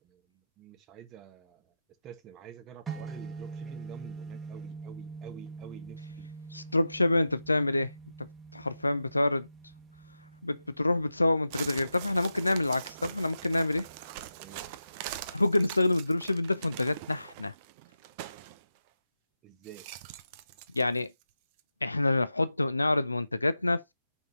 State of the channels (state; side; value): inverted; both; correlation -0.91